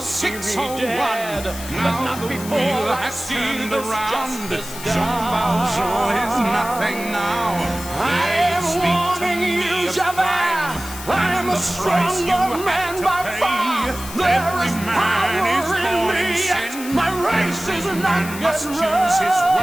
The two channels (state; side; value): noise; left; hiss, 12 dB below the sound